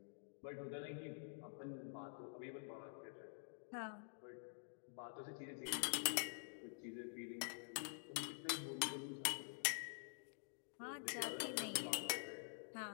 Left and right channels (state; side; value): silent; right; digital silence